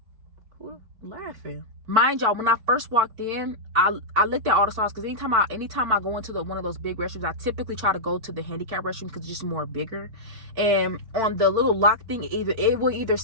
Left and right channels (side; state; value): left; late; 4.5 ms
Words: who laughing? Mind y'all, when I first walked in, I looked at all the stalls, because anytime I go into one of those big restrooms, I typically try to go to the handicap restroom because it's just more bigger. And on the little lock thing, it will either